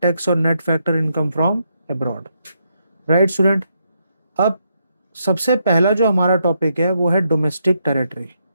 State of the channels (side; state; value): both; inverted; correlation -0.79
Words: tax और net factor income from abroad. Right student, अब सबसे पहला जो हमारा टॉपिक है वो है डोमेस्टिक टेरिटरी,